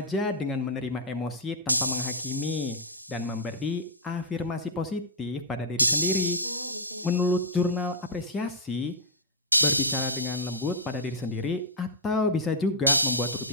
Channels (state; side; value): normal; both; correlation -0.10